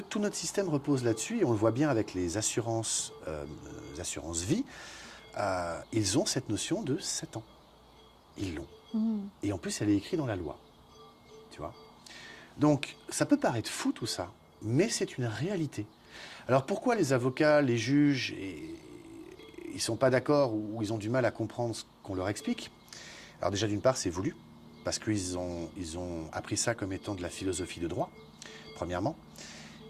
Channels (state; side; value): identical; both; correlation 1.00